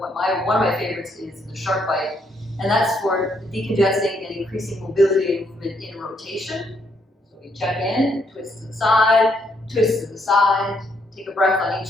of my favorites is the shark bite, and that's for decongesting and increasing mobility and movement in rotation. So we check in, twist to the side, take a breath on each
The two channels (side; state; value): both; normal; correlation 0.73